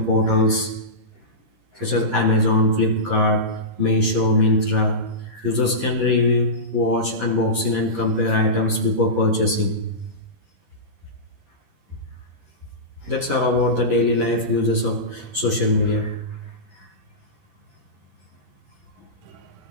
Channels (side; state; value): left; late; 11 ms